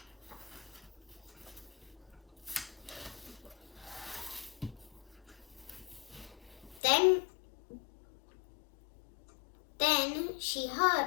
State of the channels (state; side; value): drops out; right; at 6.8 s